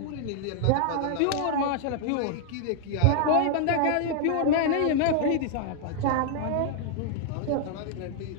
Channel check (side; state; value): both; different; correlation -0.01